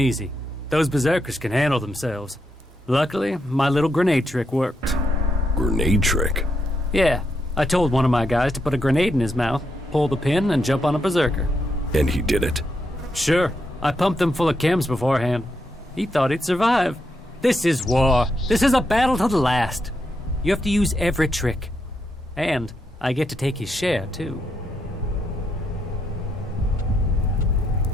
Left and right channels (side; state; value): both; normal; correlation 0.81